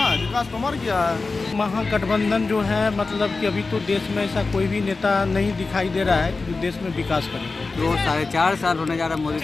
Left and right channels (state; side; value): quieter; right; 3.9 dB